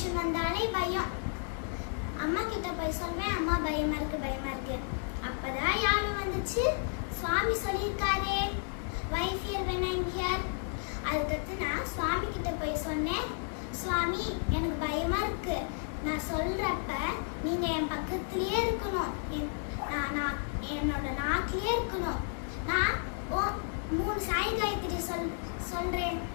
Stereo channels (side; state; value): right; silent; 56 dB below the other